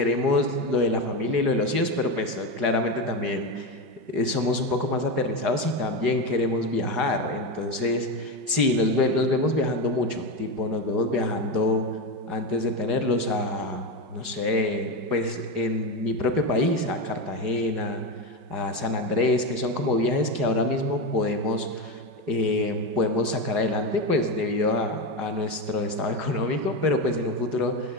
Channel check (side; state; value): left; late; 4.8 ms